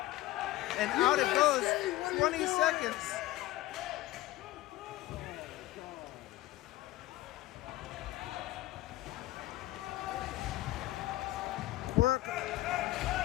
And out it goes. 20 seconds. Quirk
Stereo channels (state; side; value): quieter; right; 16.8 dB